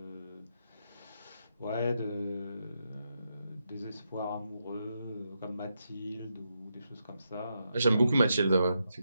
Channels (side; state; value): both; inverted; correlation -0.83